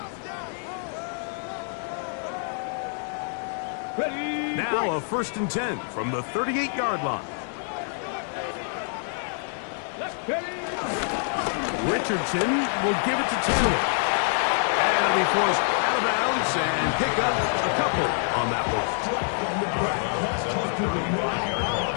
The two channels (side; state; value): right; silent; 58 dB below the other